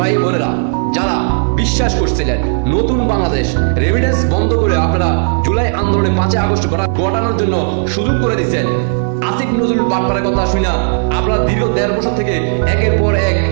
বোনেরা যারা বিশ্বাস করছিলেন নতুন বাংলাদেশ রেমিটেন্স বন্ধ করে আপনারা জুলাই আন্দোলনে 5 আগস্ট ঘটানোর জন্য সুযোগ করে দিচ্ছেন, আসিফ নজরুল বাটপারের কথা শুনা আপনারা দীর্ঘ 1.5 বছর থেকে একের পর এক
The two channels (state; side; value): silent; left; digital silence